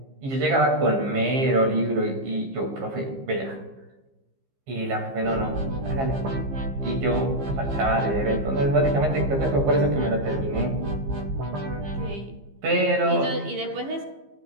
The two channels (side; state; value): left; late; 15 ms